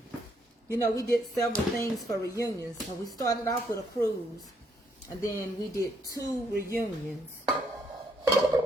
You know, we did several things for reunions. So we started off with a cruise, and then we did 2 reunions.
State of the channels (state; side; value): normal; both; correlation 0.72